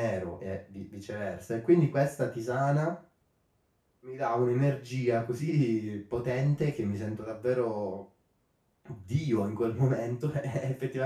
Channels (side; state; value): both; identical; correlation 1.00